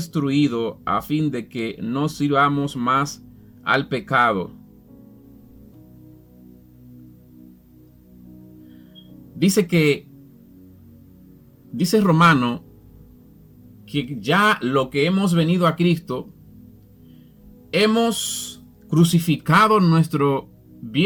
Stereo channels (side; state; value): both; identical; correlation 1.00